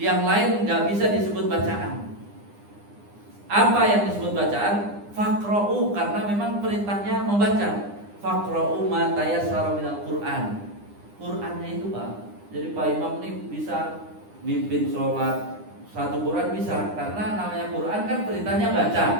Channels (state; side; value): late; left; 9.8 ms